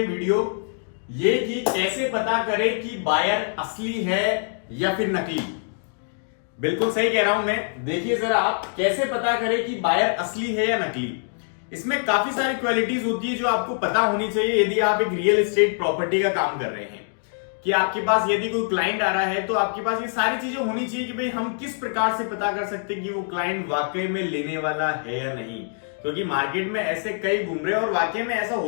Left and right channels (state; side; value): silent; right; digital silence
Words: वीडियो ये कि कैसे पता करें कि बायर असली है या फिर नकली। बिल्कुल सही कह रहा हूं मैं। देखिए जरा, आप कैसे पता करें कि बायर असली है या नकली। इसमें काफी सारी क्वालिटीज होती है जो आपको पता होनी चाहिए यदि आप एक रियल एस्टेट प्रॉपर्टी का काम कर रहे हैं। कि आपके पास यदि कोई क्लाइंट आ रहा है तो आपके पास ये सारी चीजें होनी चाहिए कि भाई हम किस प्रकार से पता कर सकते हैं कि वो क्लाइंट वाकई में लेने वाला है या नहीं। क्योंकि मार्केट में ऐसे कई घूम रहे हैं और वाकई में ऐसा